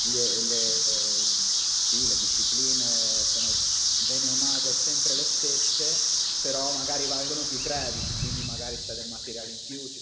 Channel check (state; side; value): identical; both; correlation 1.00